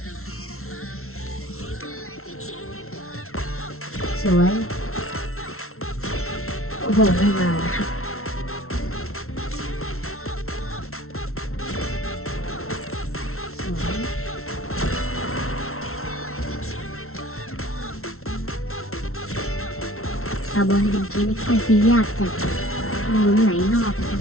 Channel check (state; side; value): late; right; 0.62 ms